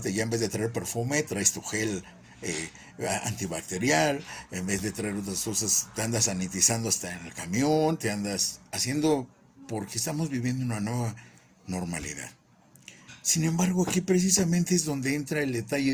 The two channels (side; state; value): both; identical; correlation 1.00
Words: ya en vez de traer perfume, traes tu gel antibacterial, en vez de traer otras cosas, te andas sanitizando hasta en el camión, te andas haciendo, porque estamos viviendo una nueva normalidad. Sin embargo, aquí precisamente es donde entra el detalle